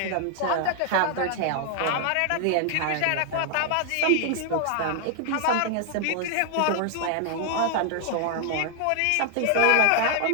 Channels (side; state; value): both; different; correlation 0.00